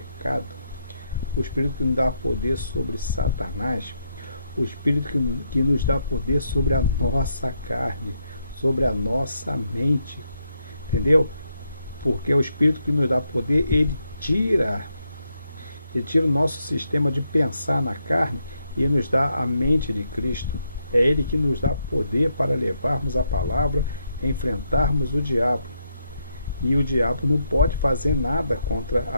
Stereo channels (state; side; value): inverted; both; correlation -0.79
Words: o Espírito que nos dá poder sobre Satanás, o Espírito que nos dá poder sobre a nossa carne, sobre a nossa mente, entendeu? Porque o Espírito que nos dá poder, ele tira o nosso sistema de pensar na carne e nos dá a mente de Cristo. É Ele que nos dá poder para levarmos a palavra, enfrentarmos o diabo. E o diabo não pode fazer nada contra